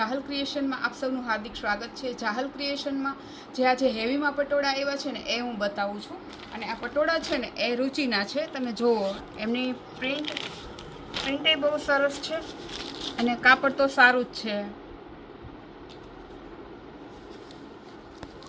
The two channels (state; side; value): identical; both; correlation 1.00